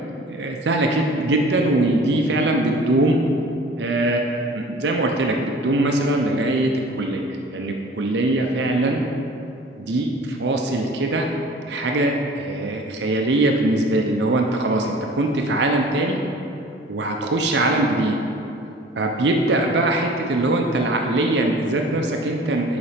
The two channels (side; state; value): both; normal; correlation 0.46